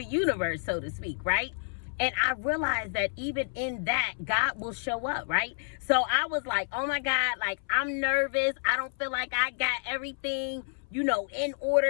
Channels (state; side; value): silent; right; 58 dB below the other